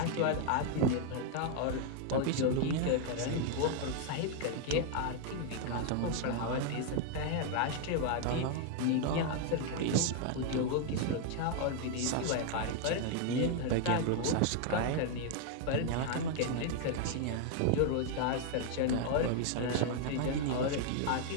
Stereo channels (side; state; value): both; different; correlation 0.00